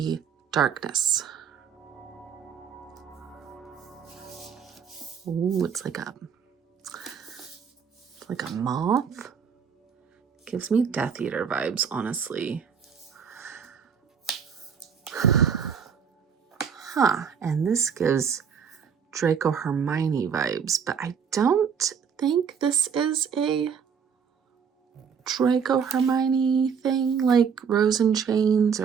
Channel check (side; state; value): left; quieter; 6.8 dB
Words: darkness. Ooh, it's like a moth. Gives me Death Eater vibes, honestly. Huh, and this gives Draco Hermione vibes, but I don't think this is a Draco Hermione thing, like Rose and Chains,